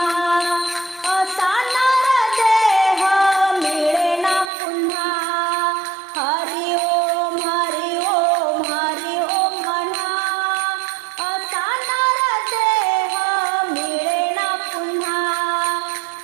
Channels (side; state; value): left; drops out; at 4.5 s